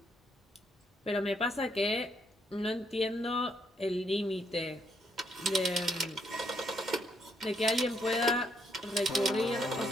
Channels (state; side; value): normal; both; correlation 0.73